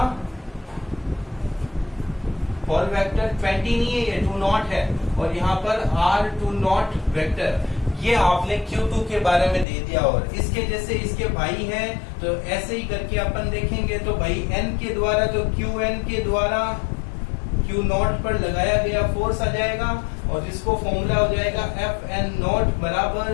होल वेक्टर। 20 नहीं है ये 2 नॉट है और यहाँ पर R2 नॉट वेक्टर। ये आपने Q2 के बारे में दे दिया और इसके जैसे इसके भाई हैं तो ऐसे ही करके अपन देखेंगे। तो भाई N के द्वारा तो QN के द्वारा Q0 पर लगाया गया फोर्स आ जाएगा और जिसको फॉर्मूला हो जाएगा FN नॉट बराबर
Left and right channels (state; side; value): drops out; right; at 9.7 s